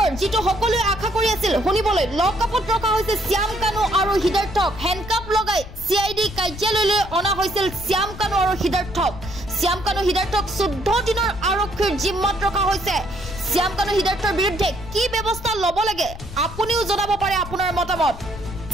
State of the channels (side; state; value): left; noise; rumble, 12 dB below the sound